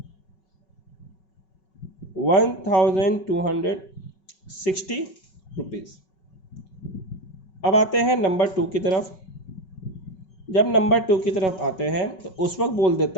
रुपीज़। अब आते हैं नंबर 2 की तरफ। जब नंबर 2 की तरफ आते हैं तो उस वक्त बोल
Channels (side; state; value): right; late; 5.3 ms